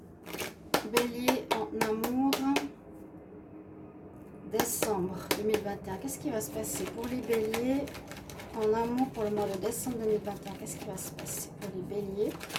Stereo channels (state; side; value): identical; both; correlation 1.00